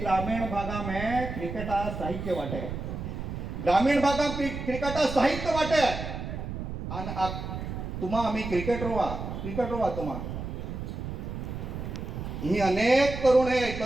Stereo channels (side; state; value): right; noise; rumble, 6 dB below the sound